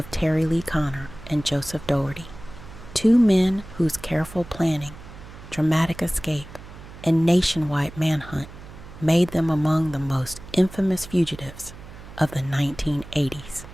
Terry Lee Connor and Joseph Dougherty, two men whose careful planning, dramatic escape, and nationwide manhunt made them among the most infamous fugitives of the 1980s.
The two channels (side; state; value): right; noise; hum, 16 dB below the sound